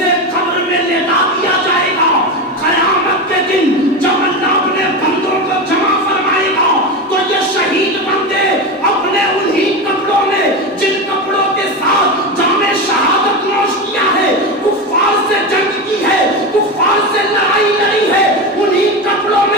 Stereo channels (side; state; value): both; normal; correlation 0.19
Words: قبر میں لیٹا دیا جائے گا. قیامت کے دن جب اللہ اپنے بندوں کو جمع فرمائے گا تو یہ شہید بندے اپنے انہی کپڑوں میں، جن کپڑوں کے ساتھ جامِ شہادت نوش کیا ہے، کفار سے جنگ کی ہے، کفار سے لڑائی لڑی ہے، انہی کپڑوں